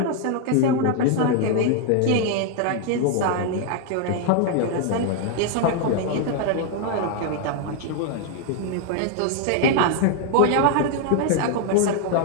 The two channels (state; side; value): different; both; correlation 0.00